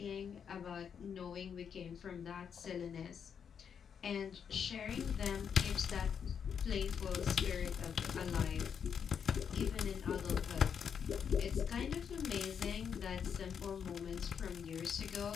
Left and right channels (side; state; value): right; quieter; 7.3 dB